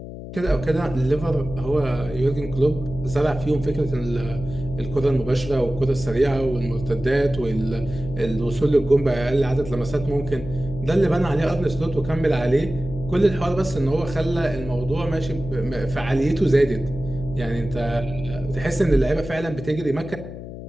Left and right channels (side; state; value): left; noise; hum, 11 dB below the sound